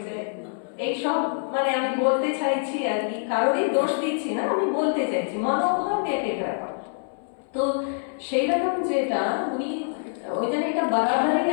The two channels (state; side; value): silent; right; 61 dB below the other